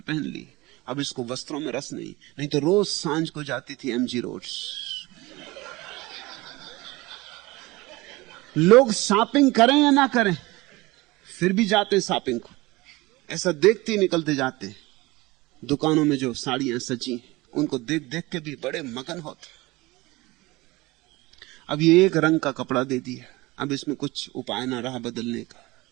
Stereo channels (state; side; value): quieter; left; 21.3 dB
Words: पहन ली, अब इसको वस्त्रों में रस नहीं। नहीं तो रोज सांझ को जाती थी एमजी रोड। लोग शॉपिंग करें या ना करें, फिर भी जाते शॉपिंग को। ऐसा देखते ही निकलते जाते। दुकानों में जो साड़ियां सजी उनको देख देख के भी बड़े मगन होते। अब ये एक रंग का कपड़ा दे दिया, अब इसमें कुछ उपाय ना रहा बदलने का।